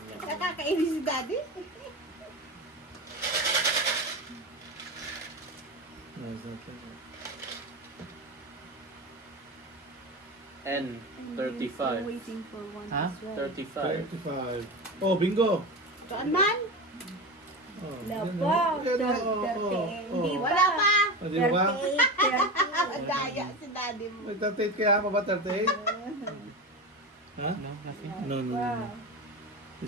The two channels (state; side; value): normal; both; correlation 0.23